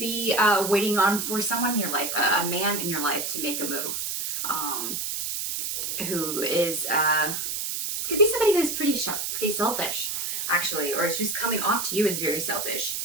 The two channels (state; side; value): noise; right; hiss, 2 dB below the sound